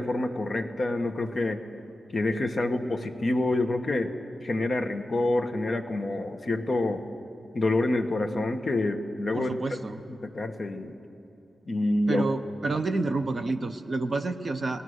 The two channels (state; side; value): normal; both; correlation 0.91